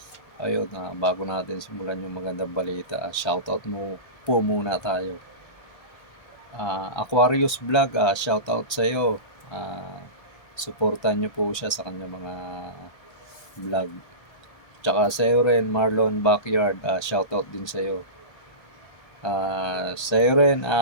Ayun, bago natin simulan yung magandang balita, shoutout mo po muna tayo. Aquarius Vlog, shoutout sa iyo. Suportahan niyo po siya sa kanya mga vlog. Tsaka sa iyo rin, Marlon Backyard, shoutout din sa iyo. Sa iyo rin,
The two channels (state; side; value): late; right; 1.3 ms